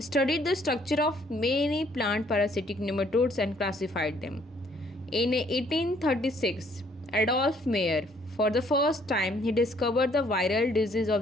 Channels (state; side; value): normal; both; correlation 0.64